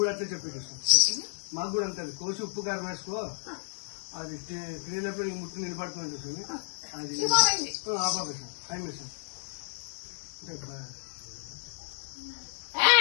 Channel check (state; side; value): silent; right; digital silence